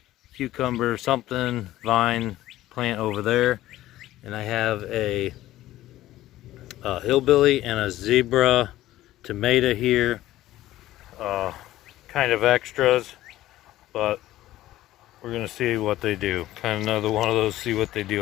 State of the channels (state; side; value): quieter; right; 15.1 dB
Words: cucumber something vine plant over there, and I have a hillbilly and a zebra tomato here, kind of extras, but we're gonna see what they do. Kind of another one of those, see what they